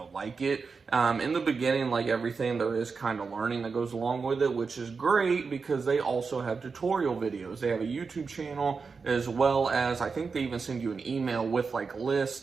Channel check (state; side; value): quieter; left; 4.9 dB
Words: like it. In the beginning, like everything, there is kind of learning that goes along with it, which is great because they also have tutorial videos. They have a YouTube channel, as well as, I think they even send you an email with